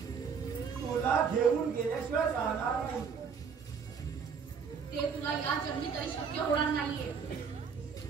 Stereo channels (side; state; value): left; quieter; 6.3 dB